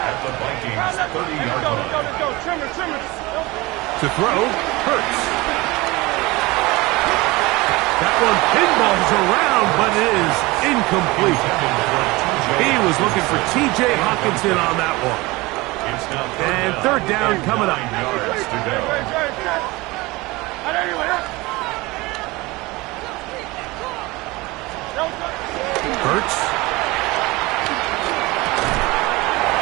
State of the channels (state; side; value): quieter; left; 22.1 dB